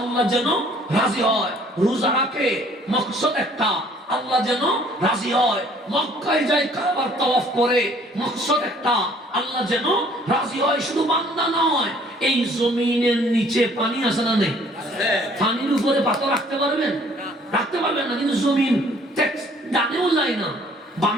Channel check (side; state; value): both; normal; correlation 0.58